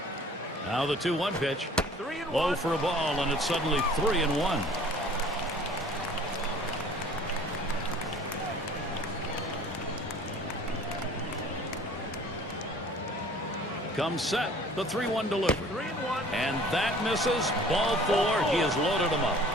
Now the 2-1 pitch. Low for a ball, and it's suddenly 3-1. Comes set, the 3-1 delivery. And that misses. Ball 4. He has loaded him up.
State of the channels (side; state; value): both; normal; correlation 0.49